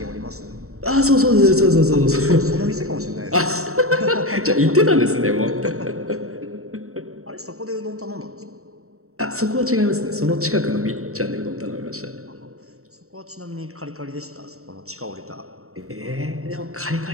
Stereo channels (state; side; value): late; left; 0.64 ms